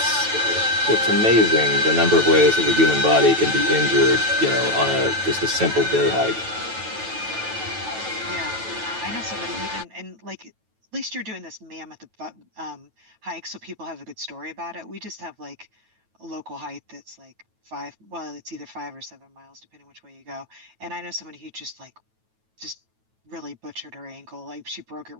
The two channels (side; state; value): left; late; 9.2 ms